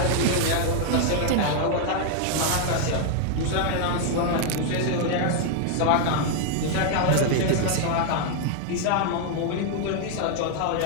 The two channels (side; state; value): both; different; correlation 0.00